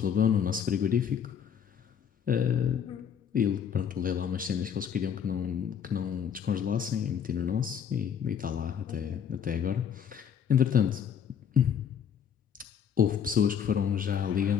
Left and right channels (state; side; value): quieter; right; 7.9 dB